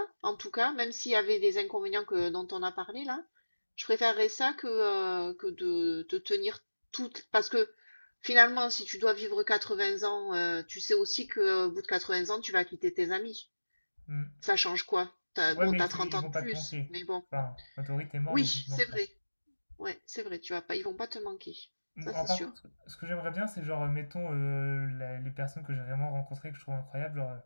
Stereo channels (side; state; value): both; inverted; correlation -1.00